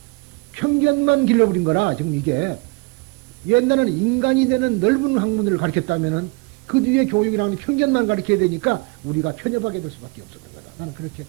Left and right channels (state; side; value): quieter; left; 28.1 dB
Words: 편견만 길러버린 거라, 지금 이게. 옛날에는 인간이 되는 넓은 학문을 가르쳤다면은 그 뒤에 교육이라는 편견만 가르쳐야 되니까 우리가 편협하게 될 수밖에 없었던 거다. 나는 그렇게